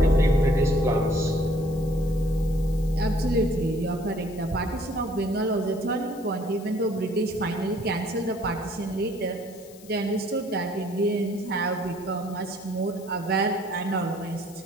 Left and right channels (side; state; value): left; noise; hiss, 22 dB below the sound